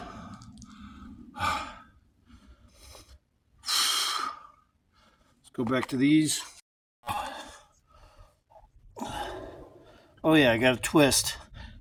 Let's go back to these. Oh yeah, I got a twist.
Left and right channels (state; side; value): identical; both; correlation 1.00